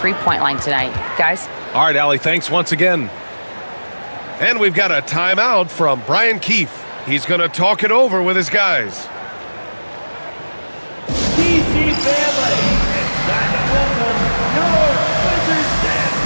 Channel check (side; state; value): both; inverted; correlation -1.00